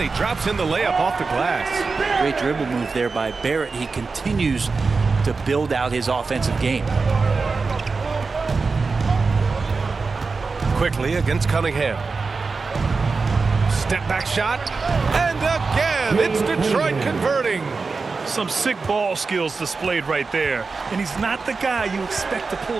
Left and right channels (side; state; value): left; quieter; 4.4 dB